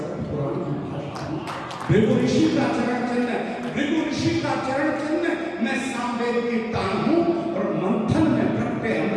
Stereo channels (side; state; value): both; identical; correlation 1.00